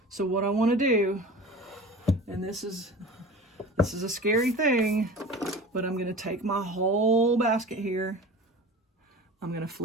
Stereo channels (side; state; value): both; normal; correlation 0.37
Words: So what I want to do, and this is a scary thing, but I'm going to take my whole basket here. I'm going to